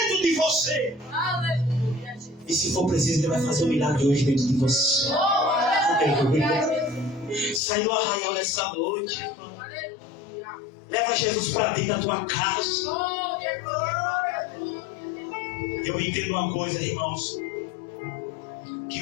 de você. E se for preciso, Ele vai fazer um milagre hoje dentro de você. Sai do arraial nessa noite. Leva Jesus para dentro da tua casa. Eu entendo uma coisa, irmãos,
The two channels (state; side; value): drops out; right; at 7.6 s